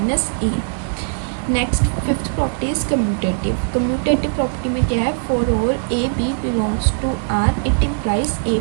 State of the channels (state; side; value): silent; left; 66 dB below the other